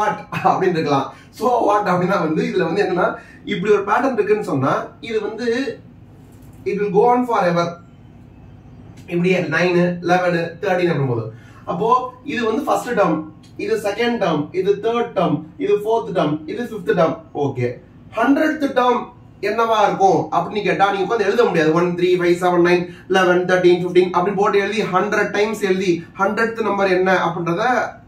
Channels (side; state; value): both; identical; correlation 1.00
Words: அப்படின்னு இருக்கலாம். சோ வாட் அப்படின்னா வந்து இதுல வந்து என்னன்னா இப்படி ஒரு பேட்டர்ன் இருக்குன்னு சொன்னா இது வந்து it will go on forever. இப்படியே 9, 11, 13 அப்படின் போது அப்போ இது வந்து ஃபர்ஸ்ட் டேர்ம், இது செகண்ட் டேர்ம், இது தேர்ட் டேர்ம், இது ஃபோர்த் டேர்ம், இது fifth term. Okay, 100th term என்னவா இருக்கும் அப்படின்னு கேட்டா நீங்க உட்கார்ந்து எழுத முடியாது. 1, 3, 5, 7, 9, 11, 13, 15 அப்படின்னு போட்டு எழுதி 100 டைம்ஸ் எழுதி 100th நம்பர் என்ன அப்படின்றத